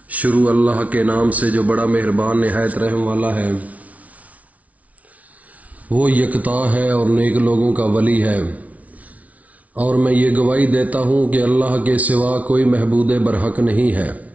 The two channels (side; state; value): left; late; 0.069 ms